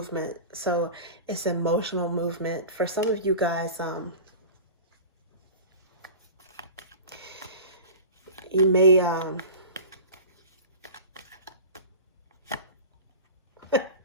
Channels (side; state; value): both; inverted; correlation -0.34